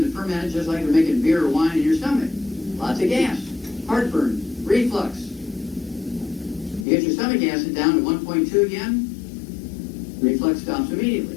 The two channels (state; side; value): drops out; right; at 6.9 s